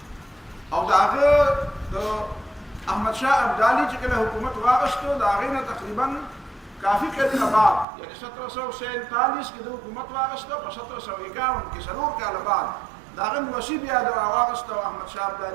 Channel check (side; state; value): left; drops out; at 7.9 s